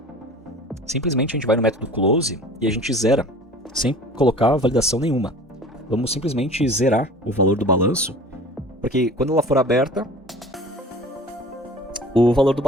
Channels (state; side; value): normal; both; correlation 0.43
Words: simplesmente a gente vai no método close e a gente zera, sem colocar validação nenhuma. Vamos simplesmente zerar o valor do balanço, porque quando ela for aberta, o valor do